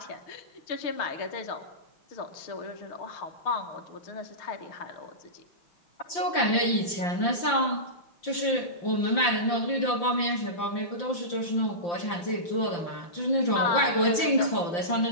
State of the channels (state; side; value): late; right; 5.8 ms